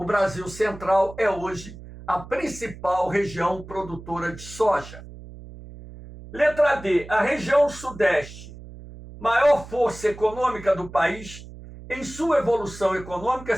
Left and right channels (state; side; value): noise; right; hum, 16 dB below the sound